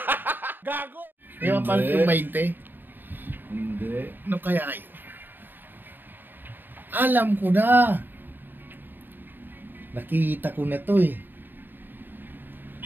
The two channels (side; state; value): left; late; 0.093 ms